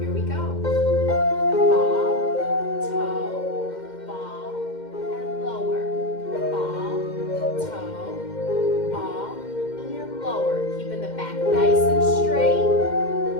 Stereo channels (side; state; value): right; late; 2.1 ms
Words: we go. Ball, toe, ball, and lower. Ball, toe, ball, and lower. Keeping the back nice and straight.